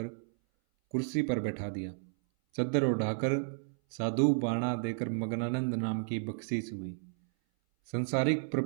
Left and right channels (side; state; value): left; silent; 56 dB below the other